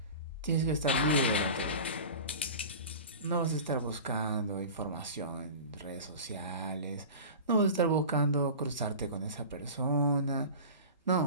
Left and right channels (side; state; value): both; inverted; correlation -0.35